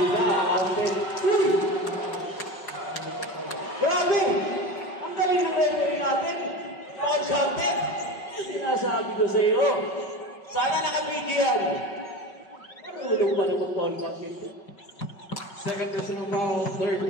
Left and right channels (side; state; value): right; late; 5.4 ms